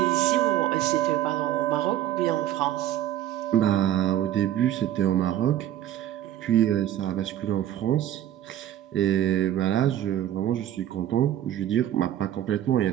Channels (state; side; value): quieter; left; 12.0 dB